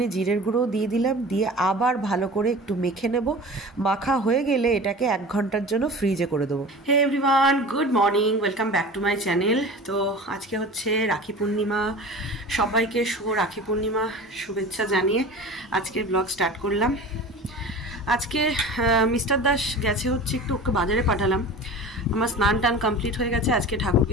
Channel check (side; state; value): both; normal; correlation 0.36